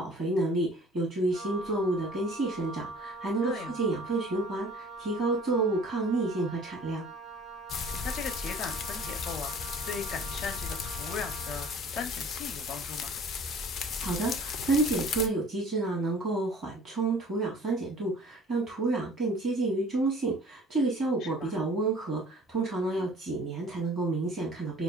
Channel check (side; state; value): both; normal; correlation 0.49